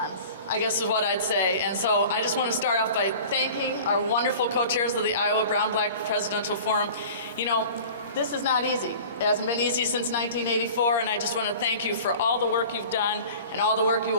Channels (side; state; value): both; inverted; correlation -0.41